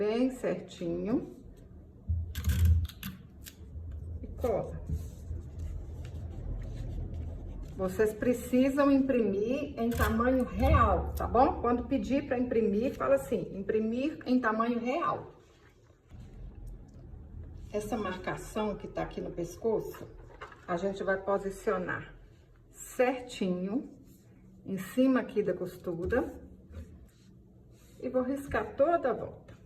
certinho. E cola. Vocês precisam imprimir em tamanho real, tá bom? Quando pedir para imprimir, fala assim, imprimir em tamanho real. Essa marcação que tá aqui no pescoço, a gente vai posicionar certinho em cima aqui da costura e vou riscar toda a volta.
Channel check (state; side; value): identical; both; correlation 1.00